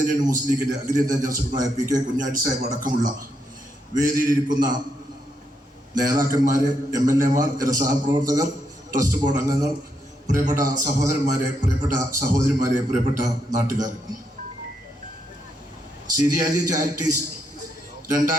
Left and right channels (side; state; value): both; normal; correlation 0.79